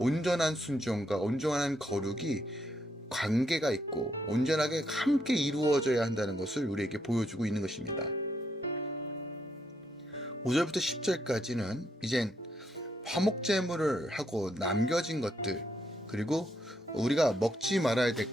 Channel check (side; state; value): both; normal; correlation 0.77